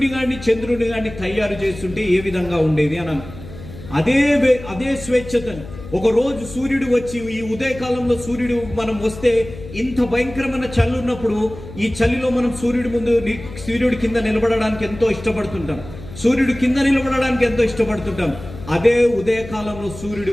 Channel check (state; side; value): noise; left; hum, 14 dB below the sound